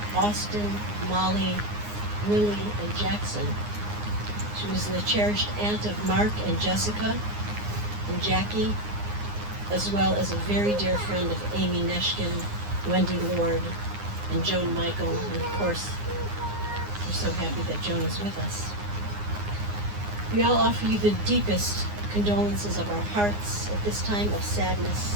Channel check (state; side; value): late; left; 9.7 ms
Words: Austin, Molly, Willie, and Jackson. She was the cherished aunt of Mark and Jessica and Jackie, as well as a very dear friend of Amy Neshkin, Wendy Lord, and Joan Michael, and of course, we're so happy that Joan is with us. We all offer you the deepest condolences of our hearts at this time of